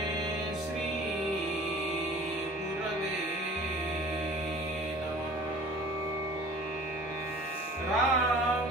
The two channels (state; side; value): normal; both; correlation 0.46